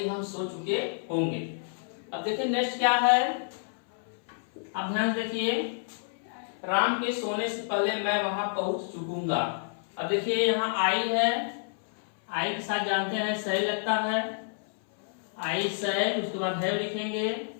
हम सो चुके होंगे। अब देखिए नेक्स्ट क्या है, अब ध्यान देखिए, राम के सोने से पहले मैं वहां पहुंच चुकूंगा। अब देखिए यहाँ आई है, आई के साथ जानते हैं सही लगता है, आई सही, उसके बाद है लिखेंगे,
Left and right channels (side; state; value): right; silent; 58 dB below the other